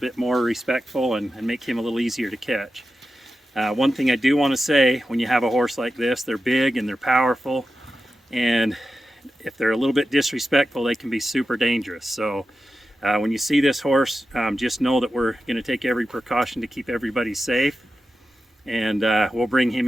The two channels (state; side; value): normal; both; correlation 0.92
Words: more respectful and make him a little easier to catch. One thing I do want to say, when you have a horse like this, they're big and they're powerful, and if they're a little bit disrespectful, they can be super dangerous. So when you see this horse, just know that we're going to take every precaution to keep everybody safe, and we'll bring him